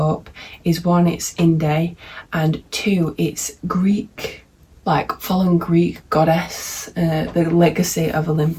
is one, it's indie, and two, it's Greek, like following Greek goddess, the legacy of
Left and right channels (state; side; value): identical; both; correlation 1.00